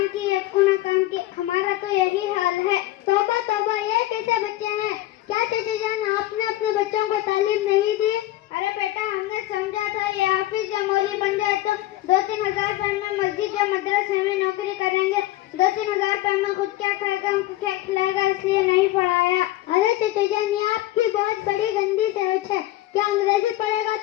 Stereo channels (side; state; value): right; quieter; 15.7 dB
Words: की एक कुना काम की, हमारा तो यही हाल है। तौबा तौबा, ये कैसे बच्चे हैं? क्या चाचा जान आपने अपने बच्चों को तालीम नहीं दी? अरे बेटा हमने समझा था ये हाफिज या मौलवी बन जाए तो 2-3 हजार रुपए में मस्जिद या मदरसे में नौकरी करेंगे, 2-3 हजार रुपए में खुद क्या खाएगा उनको क्या खिलाएगा, इसलिए नहीं पढ़ाया। अरे चाचा जान, ये आपकी बहुत बड़ी गंदी सोच है। क्या अंग्रेजी पढ़ेगा